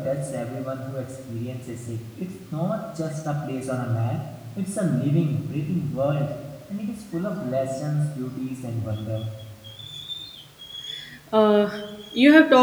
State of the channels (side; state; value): both; identical; correlation 1.00